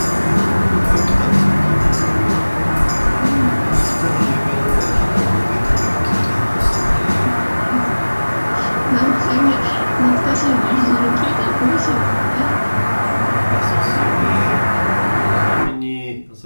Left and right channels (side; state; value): both; inverted; correlation -1.00